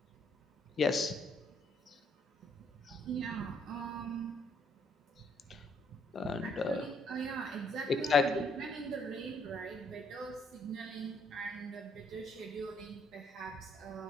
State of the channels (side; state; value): both; normal; correlation 0.68